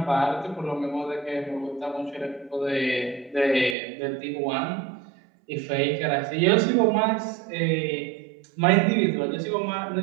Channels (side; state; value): left; drops out; at 3.8 s